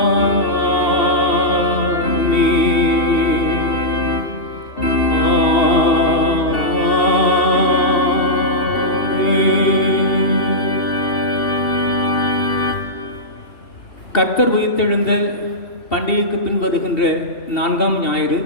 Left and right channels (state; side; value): late; right; 2.8 ms